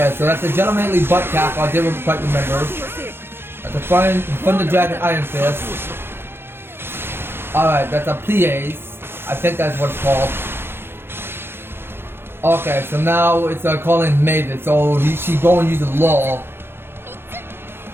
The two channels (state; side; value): late; left; 0.11 ms